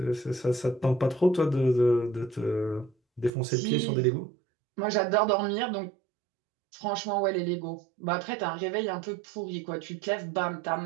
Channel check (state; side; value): drops out; left; at 3.3 s